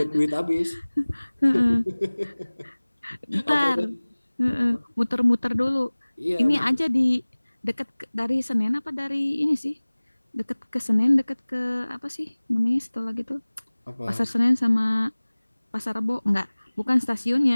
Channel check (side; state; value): both; inverted; correlation -1.00